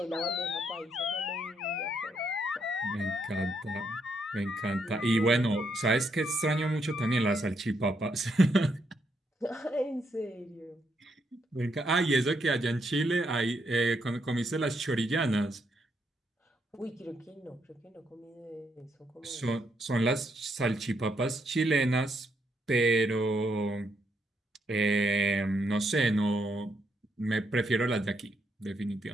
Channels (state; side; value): normal; both; correlation 0.77